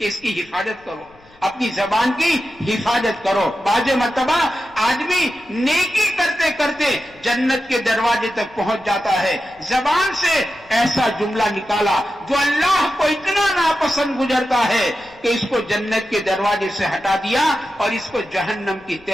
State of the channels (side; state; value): left; noise; rumble, 28 dB below the sound